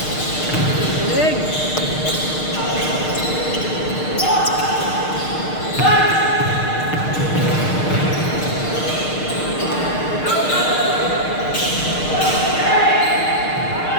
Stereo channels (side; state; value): right; late; 6.5 ms